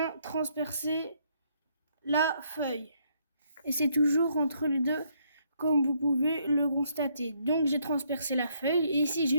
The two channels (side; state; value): both; inverted; correlation -0.71